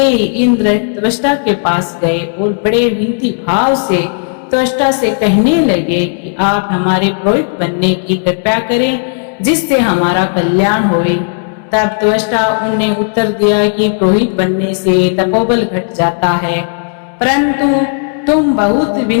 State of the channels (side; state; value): right; silent; digital silence